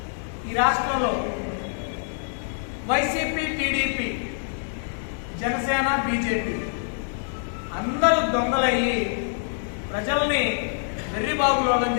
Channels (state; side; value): silent; right; digital silence